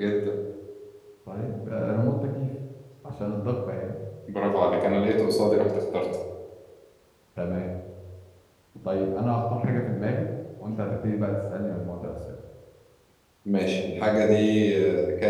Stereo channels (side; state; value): both; identical; correlation 1.00